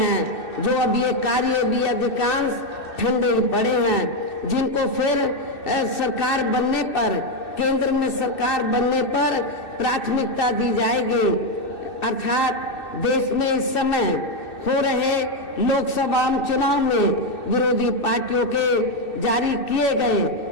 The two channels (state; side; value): late; right; 2.6 ms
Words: जो अब ये कार्य भी अधिकांश ठंडे ही पड़े हैं, जिनको फिर सरकार बनने पर, केंद्र में सरकार बनने पर प्राथमिकता दी जाएगी। अर्थात देश में इस समय हो रहे लोकसभा चुनाव में विरोधी पार्टियों के जारी किए गए